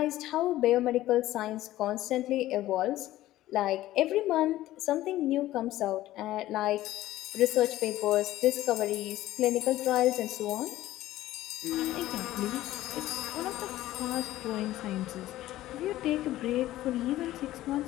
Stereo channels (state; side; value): quieter; right; 15.1 dB